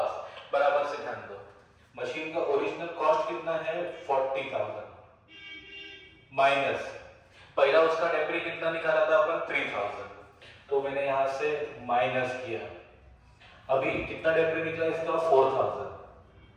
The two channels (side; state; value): both; identical; correlation 1.00